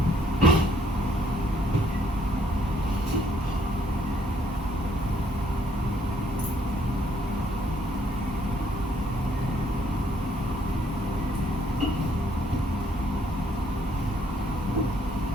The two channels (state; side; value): normal; both; correlation 0.67